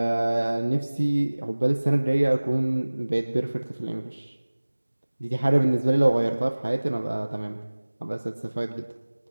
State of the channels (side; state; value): both; inverted; correlation -1.00